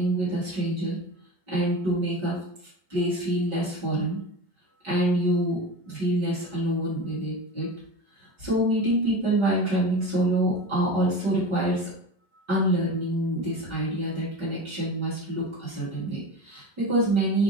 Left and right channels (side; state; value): left; late; 5.2 ms